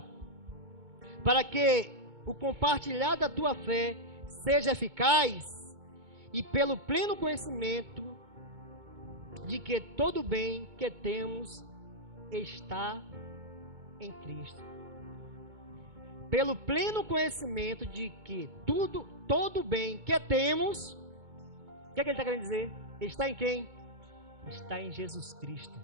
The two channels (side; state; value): left; late; 2.2 ms